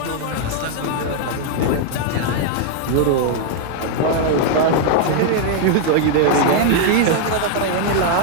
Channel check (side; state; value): both; different; correlation 0.00